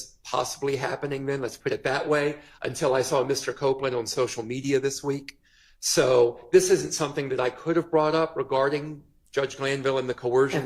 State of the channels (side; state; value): both; identical; correlation 1.00